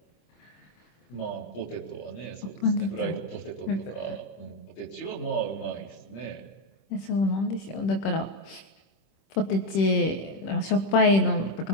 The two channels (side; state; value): right; late; 26 ms